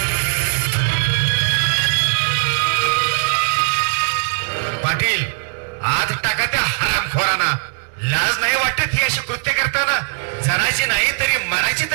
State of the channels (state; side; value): silent; left; digital silence